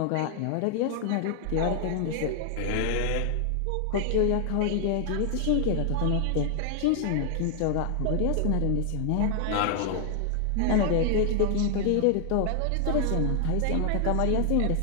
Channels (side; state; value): both; different; correlation 0.00